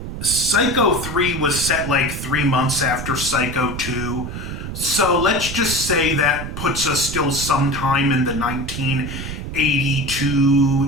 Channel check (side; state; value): right; noise; rumble, 7 dB below the sound